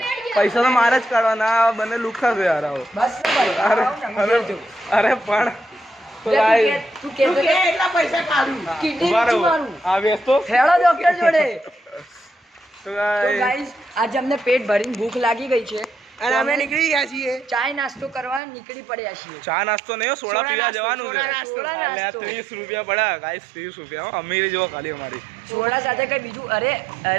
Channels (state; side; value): drops out; left; at 18.4 s